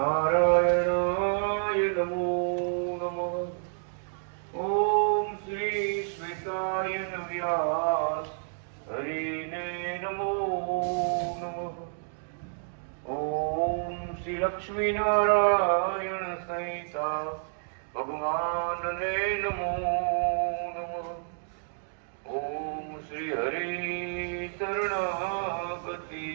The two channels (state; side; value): silent; left; digital silence